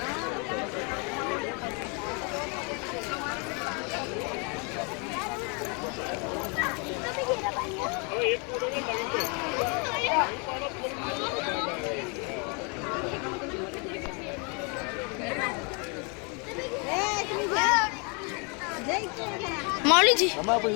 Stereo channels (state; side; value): quieter; right; 34.5 dB